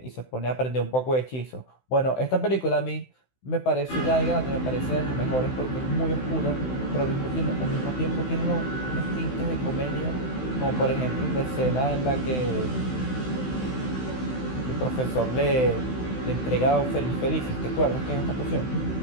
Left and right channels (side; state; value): right; late; 16 ms